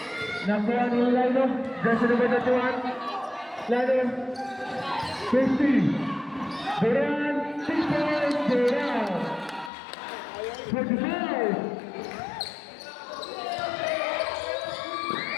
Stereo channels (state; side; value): drops out; right; at 9.7 s